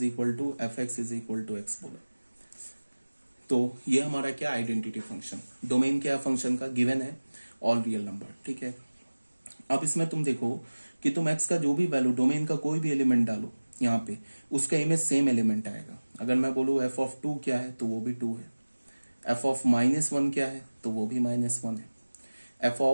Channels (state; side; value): inverted; both; correlation -1.00